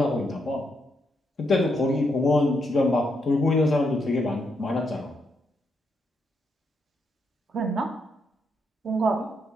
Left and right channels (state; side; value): normal; both; correlation 0.79